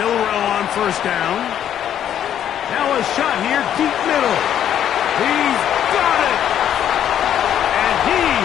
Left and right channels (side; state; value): right; quieter; 10.2 dB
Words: on first down. Now a shot here, deep middle. He's got it! And he